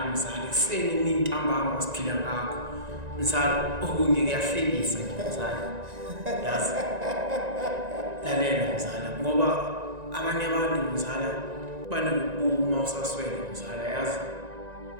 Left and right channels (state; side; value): late; left; 1.9 ms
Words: mzala ekuseni emini ntambama siphila ngakho. Mzala okunye kuyahlekisa mzala. Yazi. Lalela mzala ngoba abanye abantu mzala banokubuma usaswele mzala yazi